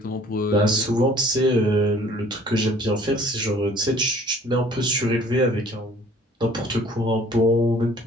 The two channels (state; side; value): normal; both; correlation 0.53